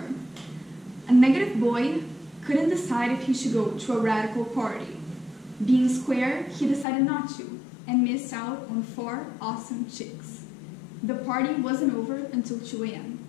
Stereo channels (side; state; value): right; drops out; at 6.9 s